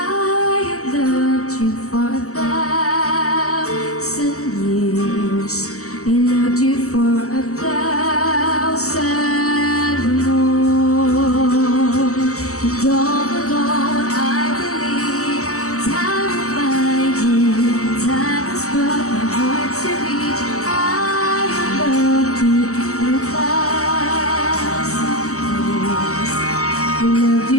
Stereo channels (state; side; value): late; right; 0.65 ms